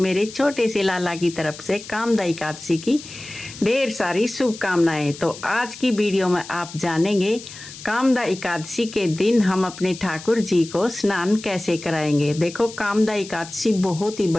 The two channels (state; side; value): noise; left; hiss, 15 dB below the sound